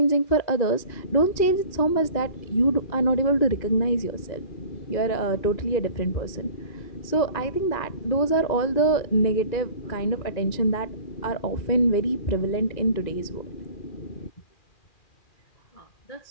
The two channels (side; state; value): right; late; 2.0 ms